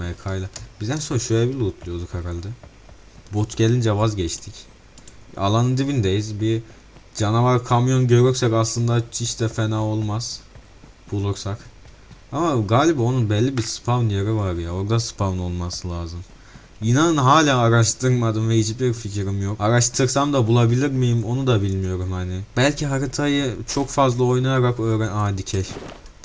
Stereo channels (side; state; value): both; identical; correlation 1.00